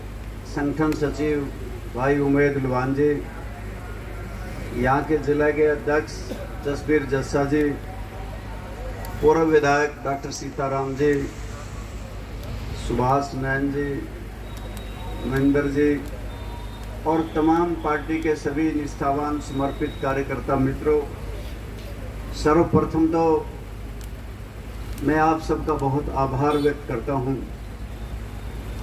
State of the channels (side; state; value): both; identical; correlation 1.00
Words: संगठन सचिव भाई उमेद लुवान जी, यहाँ के जिला के अध्यक्ष जसबीर जस्सा जी, पूर्व विधायक डॉक्टर सीताराम जी, सुभाष नैन जी, महेंद्र जी और तमाम पार्टी के सभी निष्ठावान समर्पित कार्यकर्ता मित्रों, सर्वप्रथम तो मैं आप सबका बहुत आभार व्यक्त करता हूं